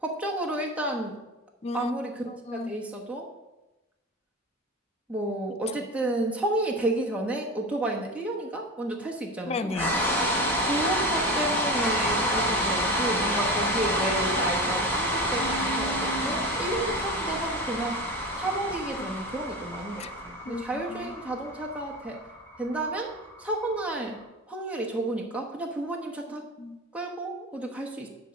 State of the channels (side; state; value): both; normal; correlation 0.28